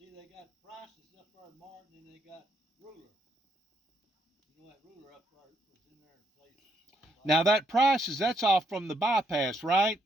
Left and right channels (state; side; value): normal; both; correlation 0.75